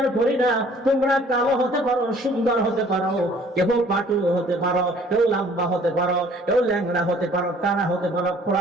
করি না। তোমরা কালো হতে পারো, সুন্দর হতে পারো, কেউ পাটু হতে পারো, কেউ লম্বা হতে পারো, কেউ ল্যাংড়া হতে পারো, টানা হতে পারো,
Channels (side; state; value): both; normal; correlation 0.55